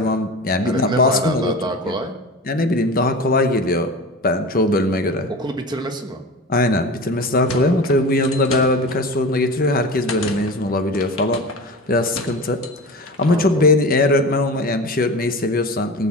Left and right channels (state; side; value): normal; both; correlation 0.31